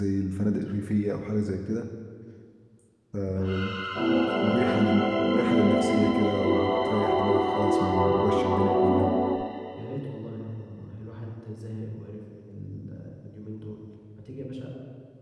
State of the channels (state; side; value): identical; both; correlation 1.00